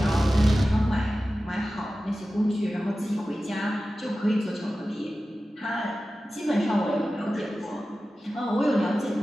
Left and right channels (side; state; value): both; normal; correlation 0.95